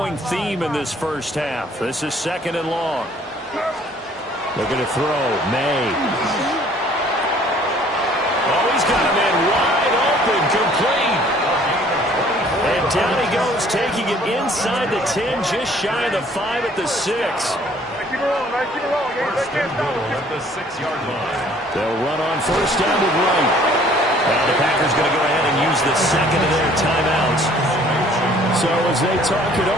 theme in this first half. This is 2nd and long. They're going to throw. May. Oh, he's got a man wide open, complete. And down he goes, taking it inside the 10, just shy of the 5 at the 6. First and goal at the 6-yard line. They'll run on first down with Wright. Now the Packers going to go ahead and use the 2nd of their timeouts. So as they talk it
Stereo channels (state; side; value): normal; both; correlation 0.57